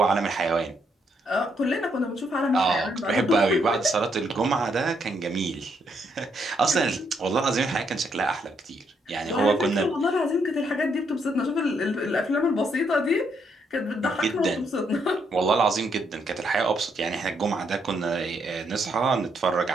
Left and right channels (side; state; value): both; normal; correlation 0.75